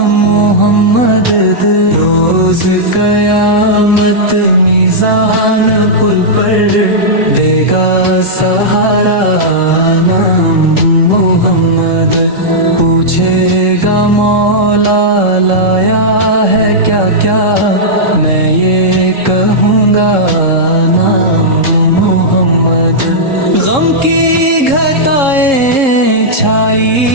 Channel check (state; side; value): late; left; 3.7 ms